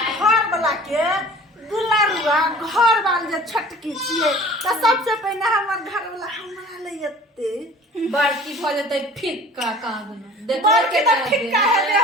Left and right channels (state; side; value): normal; both; correlation 0.46